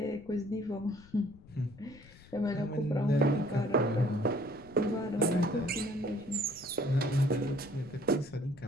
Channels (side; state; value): left; noise; rumble, 23 dB below the sound